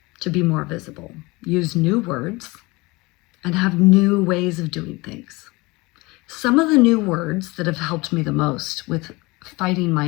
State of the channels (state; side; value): quieter; right; 23.6 dB